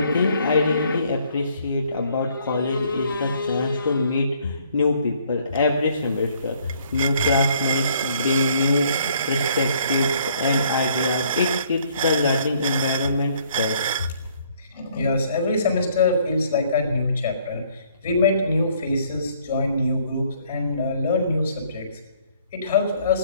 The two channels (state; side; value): inverted; both; correlation -0.63